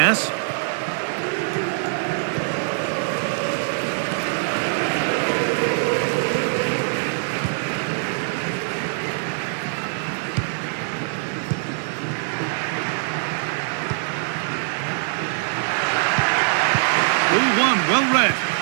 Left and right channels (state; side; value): silent; left; 63 dB below the other